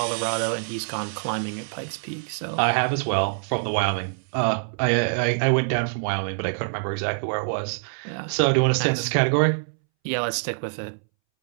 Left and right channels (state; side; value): silent; left; 62 dB below the other